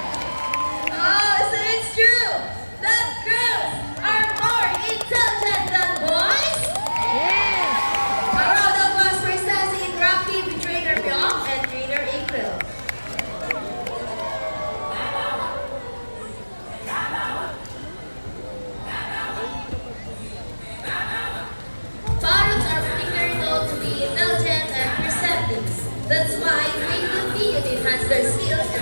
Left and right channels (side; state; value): both; inverted; correlation -1.00